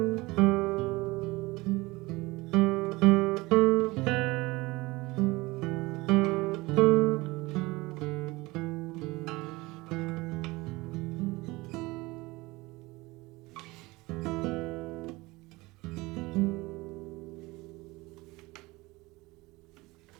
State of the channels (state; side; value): quieter; left; 21.9 dB